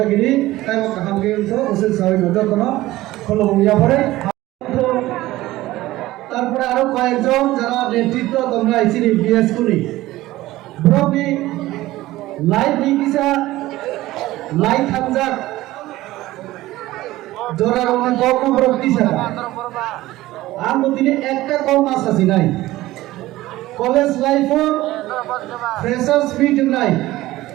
তাই হামকে তো ওসে সবাই যতন খোলো ইয়া পরে তারপরে আরো কয়েকজন যারা নেতৃত্ব তোমরা আইছিনি বিএস করি ব্রবি লাইভ নিকিসা লাইভ হামজাক জোরার অনেক কম রক্তি ছাড়া আর দিনে একটা কম মাস আছে নাই কলেজ লাইফও ফ্রেশার্স মিট নাই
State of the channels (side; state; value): left; quieter; 16.9 dB